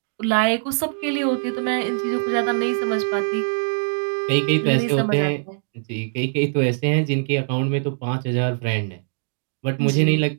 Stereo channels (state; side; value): silent; left; digital silence